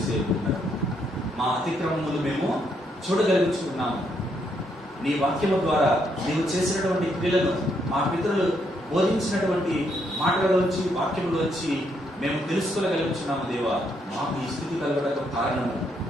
ఉన్నది, మా అతిక్రమములు మేము చూడగలుగుతున్నాము. నీ వాక్యము ద్వారా నీవు చేసినటువంటి క్రియలను, మా పితరులు బోధించినటువంటి మాటలలోంచి వాక్యములోంచి మేము తెలుసుకోగలుగుతున్నాము. దేవా, మాకు ఈ స్థితి కలగడానికి కారణము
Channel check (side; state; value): both; normal; correlation 0.75